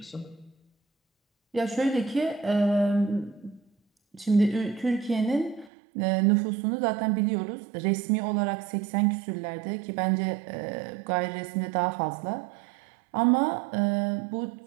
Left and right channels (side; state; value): left; drops out; at 5.7 s